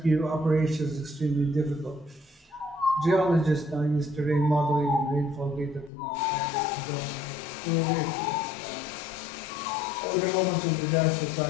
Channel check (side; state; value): right; drops out; at 5.9 s